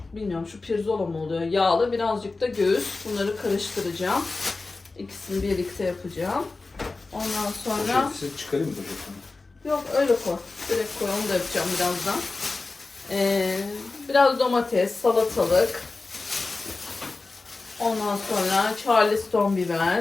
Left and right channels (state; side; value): quieter; right; 3.6 dB